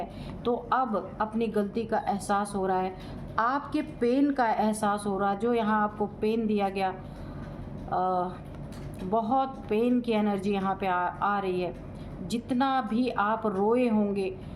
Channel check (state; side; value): identical; both; correlation 1.00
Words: तो अब अपनी गलती का एहसास हो रहा है, आपके पेन का एहसास हो रहा है। जो यहाँ आपको पेन दिया गया, बहुत पेन की एनर्जी यहाँ पे आ रही है। जितना भी आप रोए होंगे,